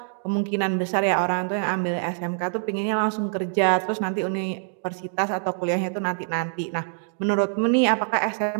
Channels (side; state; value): left; silent; digital silence